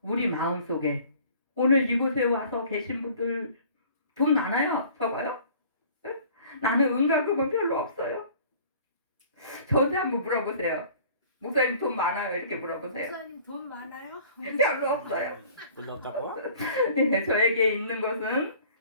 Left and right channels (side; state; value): both; inverted; correlation -0.50